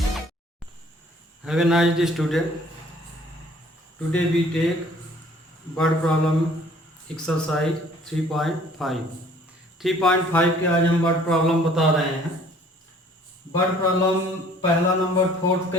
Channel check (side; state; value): both; normal; correlation 0.56